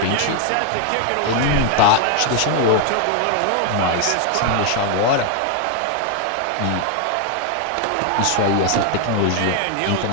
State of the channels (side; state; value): both; different; correlation 0.00